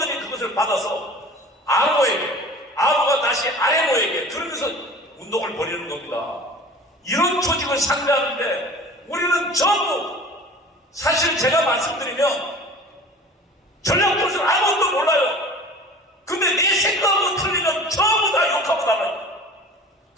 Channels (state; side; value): normal; both; correlation 0.42